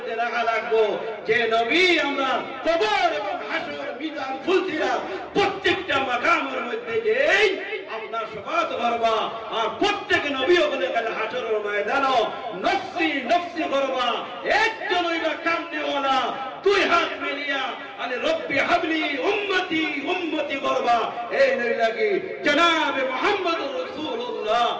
রাখা লাগবো, যে নবী আমরা কবর এবং হাসর মিজান ফুলসিরাত প্রত্যেকটা মাকামের মধ্যে যে আপনার শফাত করবা, আর প্রত্যেক নবী ওখানে কাল হাসরের ময়দানও নফসি নফসি করবা। একজন হইবা কামনেওয়ালা, 2 হাত মিলিয়া আলে রব্বি হাবলি উম্মতি উম্মতি করবা। এই নইলা কি জনাবে মুহাম্মদুর রাসূলুল্লাহ,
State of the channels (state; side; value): identical; both; correlation 1.00